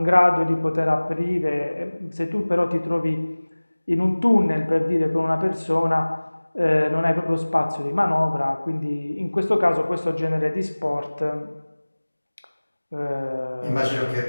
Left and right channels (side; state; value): both; inverted; correlation -1.00